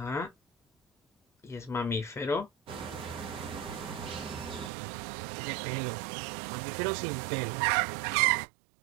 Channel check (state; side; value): drops out; left; at 4.7 s